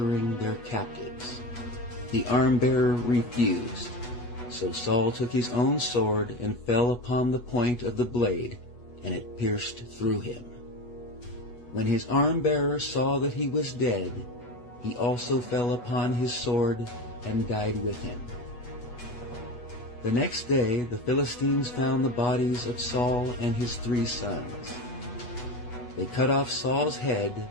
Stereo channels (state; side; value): late; right; 8.2 ms